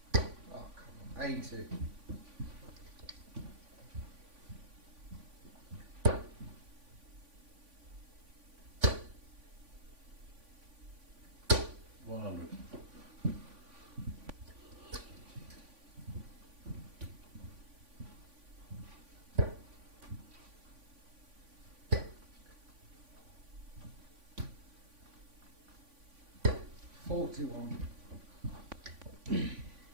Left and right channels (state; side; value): late; left; 3.5 ms